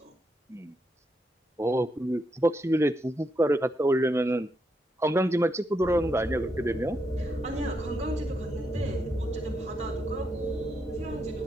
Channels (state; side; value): normal; both; correlation 0.81